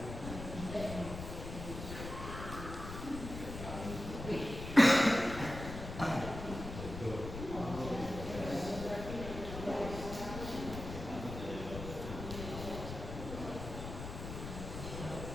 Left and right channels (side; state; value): left; noise; rumble, 8 dB below the sound